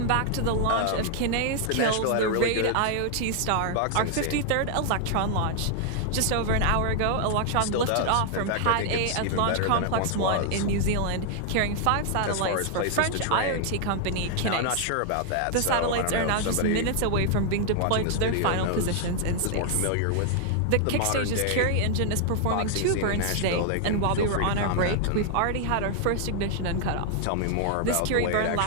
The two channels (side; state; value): both; different; correlation 0.00